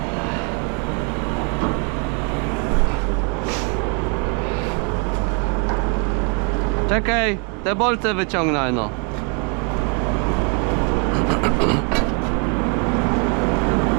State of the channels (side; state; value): left; quieter; 37.4 dB